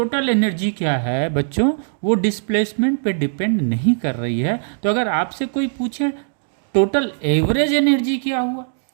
एनर्जी क्या है बच्चों, वो डिस्प्लेसमेंट पे डिपेंड नहीं कर रही है। तो अगर आपसे कोई पूछे टोटल एवरेज एनर्जी क्या हुआ,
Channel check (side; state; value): left; silent; digital silence